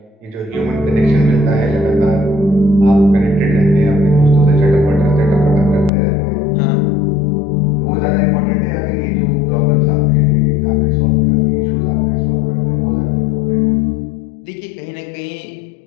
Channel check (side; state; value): right; drops out; at 5.9 s